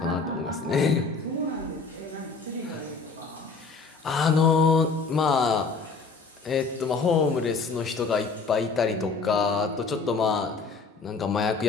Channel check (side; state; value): right; quieter; 4.5 dB